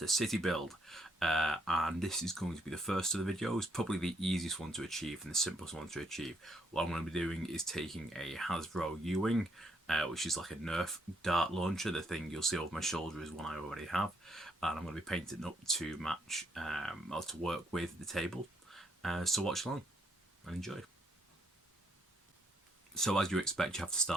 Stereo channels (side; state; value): both; normal; correlation 0.72